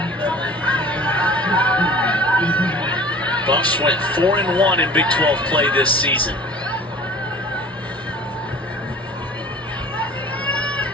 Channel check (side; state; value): both; normal; correlation 0.44